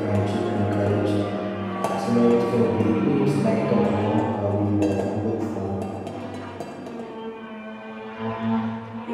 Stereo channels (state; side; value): identical; both; correlation 1.00